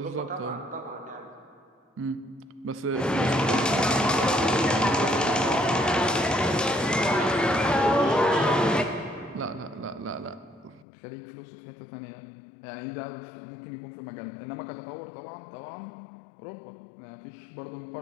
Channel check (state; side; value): drops out; right; at 10.9 s